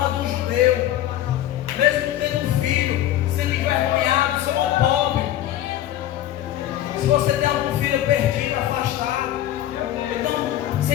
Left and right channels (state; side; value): quieter; right; 12.9 dB